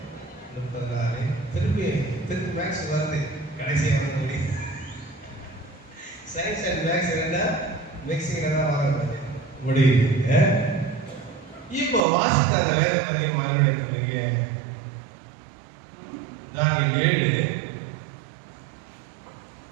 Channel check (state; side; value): drops out; left; at 12.0 s